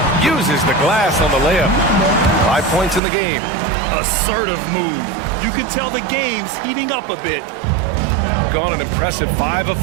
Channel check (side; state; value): left; drops out; at 3.0 s